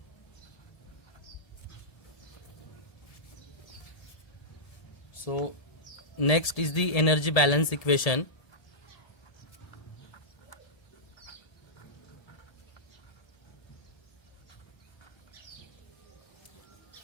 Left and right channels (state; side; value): late; right; 1.8 ms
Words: So next is the energy balance equation.